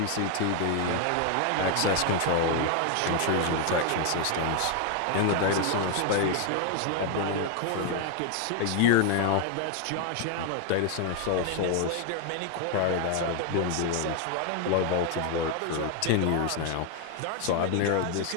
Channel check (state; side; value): different; both; correlation 0.01